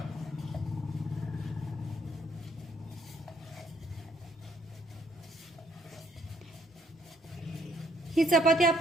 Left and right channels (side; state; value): both; normal; correlation 0.67